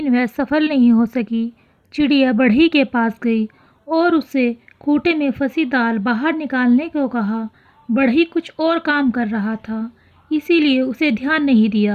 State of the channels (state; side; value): identical; both; correlation 1.00